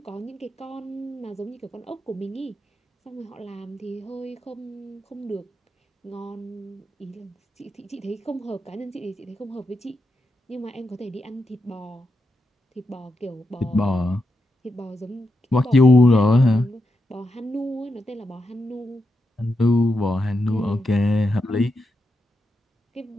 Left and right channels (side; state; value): both; normal; correlation 0.85